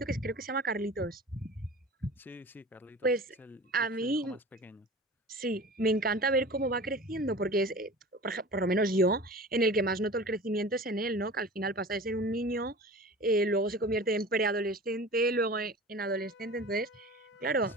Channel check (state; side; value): normal; both; correlation 0.38